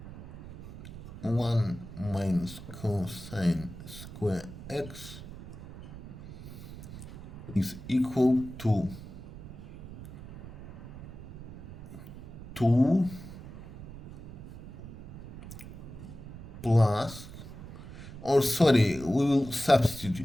1 minus cosine square x is equal to 2 plus, or sorry, we will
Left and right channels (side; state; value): right; noise; rumble, 13 dB below the sound